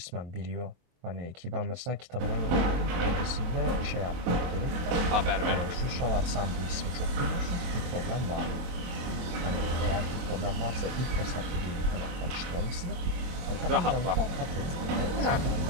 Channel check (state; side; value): late; left; 24 ms